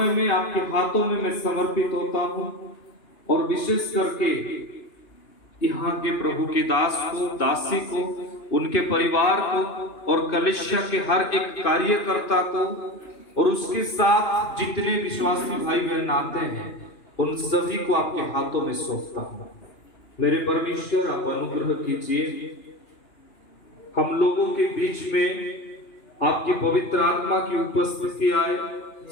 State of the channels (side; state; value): right; late; 2.9 ms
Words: में आपके हाथों में मैं समर्पित होता हूं और विशेष करके यहाँ के प्रभु के दास को, दासी को, उनके परिवार को और कलीसिया के हर एक कार्यकर्ता को और उसके साथ जितने विश्वासी भाई बहन आते हैं उन सभी को आपके हाथों में सौंपता हूं। मेरे परमेश्वर, आप अनुग्रह कीजिए, हम लोगों के बीच में आपकी पवित्र आत्मा की उपस्थिति आए,